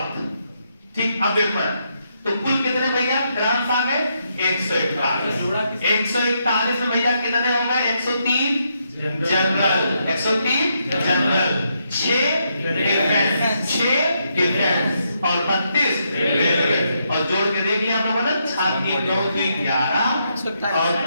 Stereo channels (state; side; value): inverted; both; correlation -0.79